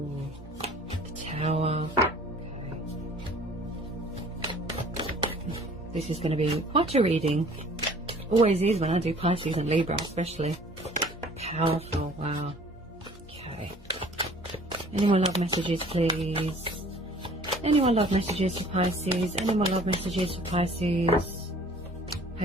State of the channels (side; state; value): both; normal; correlation 0.51